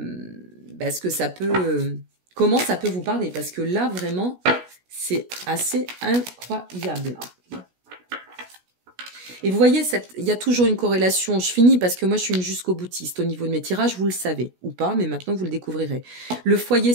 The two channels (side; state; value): left; late; 16 ms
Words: que ça peut, comment ça peut vous parler. Parce que là, vraiment, c'est assez incroyable. Et vous voyez, il y a toujours une corrélation. Je finis parce que moi, je suis une jusqu'au boutiste au niveau de mes tirages, vous le savez, ou pas, mais maintenant, vous le découvrirez. Le foyer,